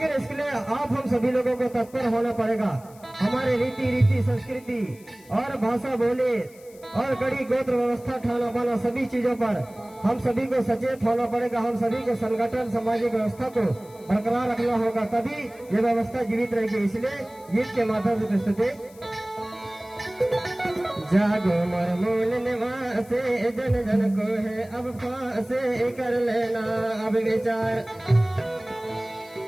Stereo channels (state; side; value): noise; left; hiss, 25 dB below the sound